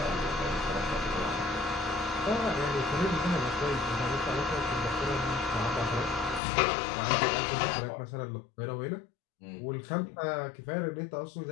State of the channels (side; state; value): right; drops out; at 6.4 s